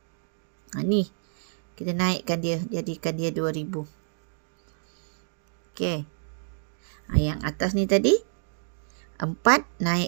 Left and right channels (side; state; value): left; silent; digital silence